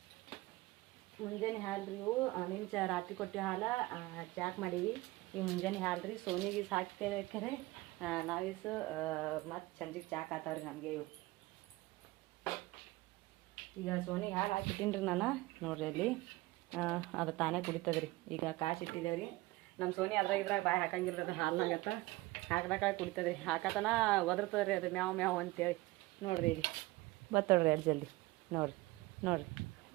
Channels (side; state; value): left; quieter; 20.2 dB